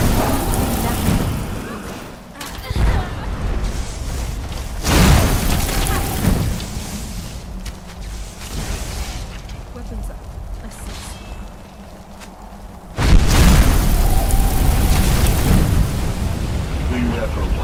Weapons up. I see. We never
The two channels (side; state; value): both; identical; correlation 1.00